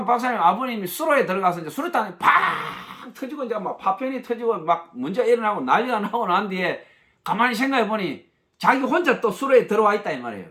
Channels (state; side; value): identical; both; correlation 1.00